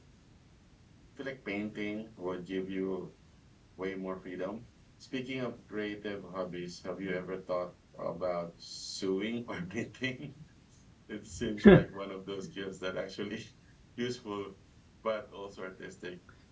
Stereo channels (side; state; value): both; identical; correlation 1.00